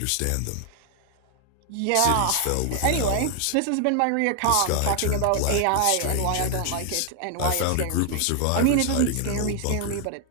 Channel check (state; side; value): different; both; correlation 0.00